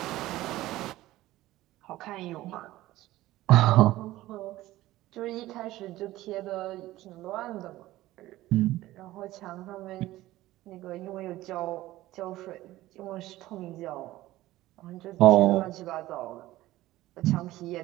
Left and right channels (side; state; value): left; quieter; 16.4 dB